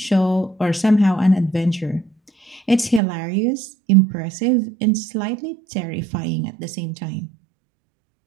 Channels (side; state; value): left; drops out; at 3.0 s